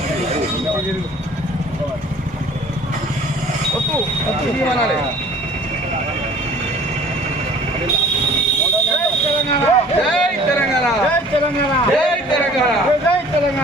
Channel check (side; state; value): both; normal; correlation 0.50